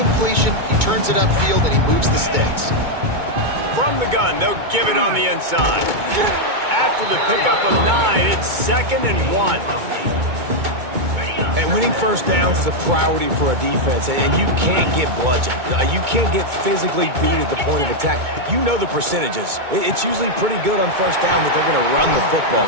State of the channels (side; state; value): left; late; 2.2 ms